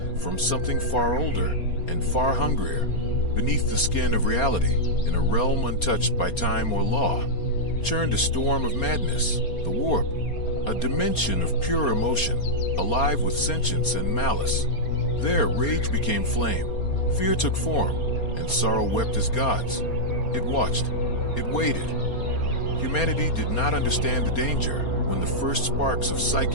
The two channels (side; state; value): right; late; 4.3 ms